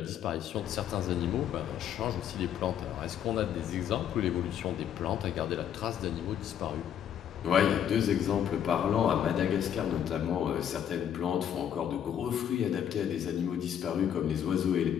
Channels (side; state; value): right; quieter; 9.4 dB